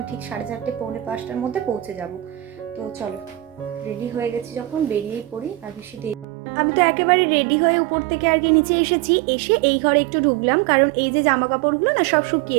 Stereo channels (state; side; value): drops out; left; at 6.2 s